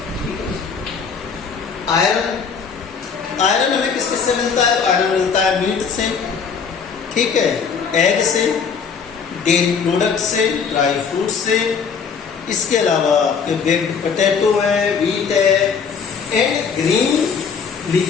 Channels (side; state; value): right; quieter; 6.1 dB